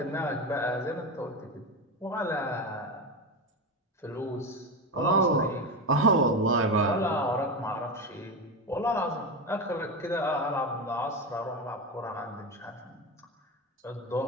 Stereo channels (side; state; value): both; normal; correlation 0.18